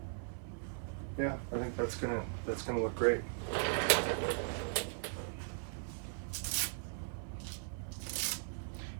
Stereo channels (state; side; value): silent; left; 52 dB below the other